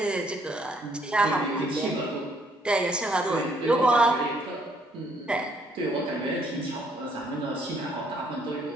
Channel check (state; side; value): normal; both; correlation 0.67